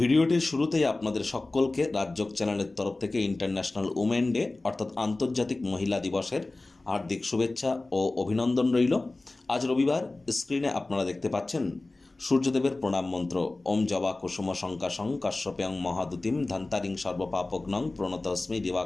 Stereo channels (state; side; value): quieter; right; 3.1 dB